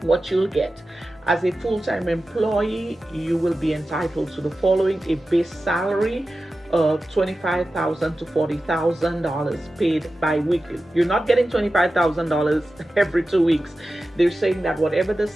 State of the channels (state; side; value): normal; both; correlation 0.94